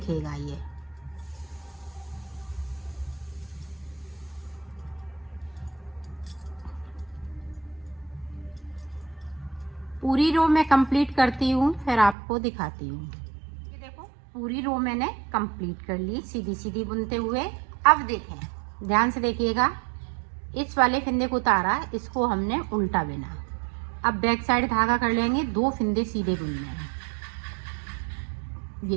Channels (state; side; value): drops out; left; at 12.2 s